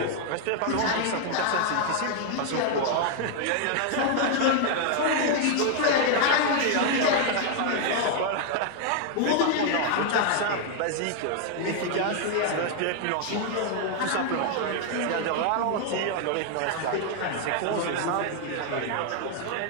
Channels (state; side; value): different; both; correlation 0.00